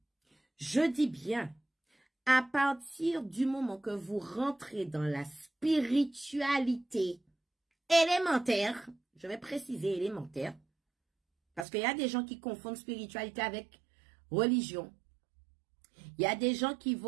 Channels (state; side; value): drops out; left; at 11.7 s